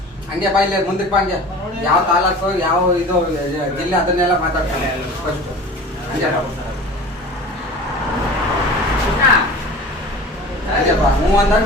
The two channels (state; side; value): normal; both; correlation 0.38